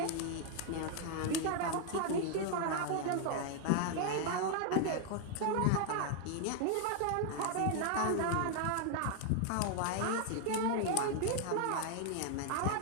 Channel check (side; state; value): both; different; correlation 0.00